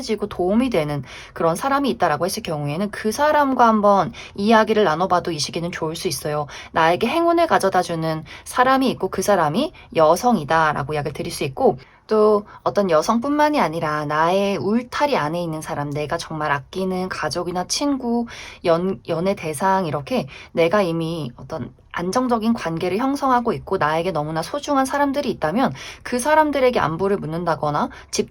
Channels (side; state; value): both; identical; correlation 1.00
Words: 도움이 되는 그런 사람이 있다라고 했을 경우에는 그 사람과 한번 이야기를 나눠봐도 이 시기는 좋을 수 있어요. 나에게 행운을 가져다주는 사람이 있고 그 사람이 여성이다라고 이야기를 드릴 수 있고, 또 어떤 여성뿐만이 아니라 나의 울타리 안에 있는 사람, 내가 정말 아끼는 가족이나 친구, 연애 대상, 이렇게 내가 이미 어떤 안정적인 관계를 형성하고 있고 나에게 너무나 소중한 사람들이 있다면 그 사람들에게 안부를 묻는다거나